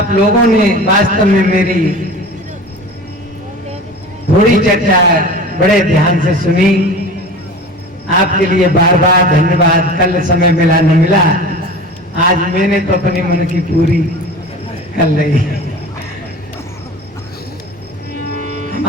लोगों ने वास्तव में मेरी थोड़ी चर्चा बड़े ध्यान से सुनी। आपके लिए बार बार धन्यवाद। कल समय मिला न मिला, आज मैंने तो अपनी मन की पूरी कर ली।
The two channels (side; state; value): both; normal; correlation 0.36